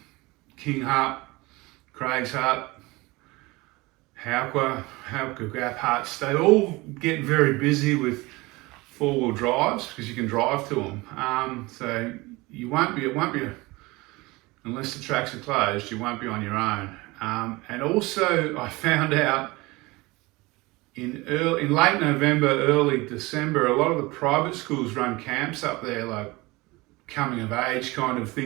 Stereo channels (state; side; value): quieter; left; 22.6 dB